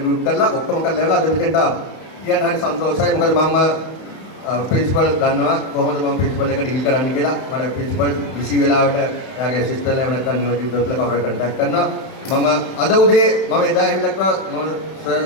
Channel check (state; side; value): late; right; 31 ms